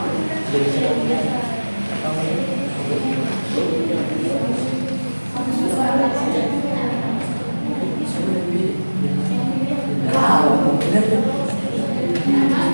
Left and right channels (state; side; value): inverted; both; correlation -1.00